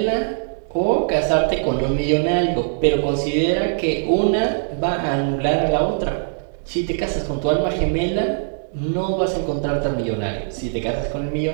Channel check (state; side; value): silent; left; digital silence